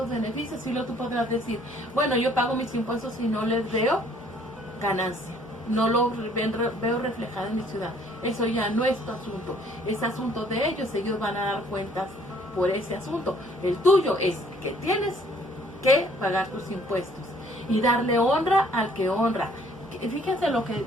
beneficios. Y luego tú podrás decir, bueno, yo pago mis impuestos y no les veo ganancia, no lo veo reflejado en mi ciudad. Eso ya no es tu asunto, es asunto de ellos. Ellos van a dar cuentas por ese asunto. El tuyo es que tienes que pagar tus impuestos y darle honra al que honra. Fíjense lo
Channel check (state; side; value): normal; both; correlation 0.60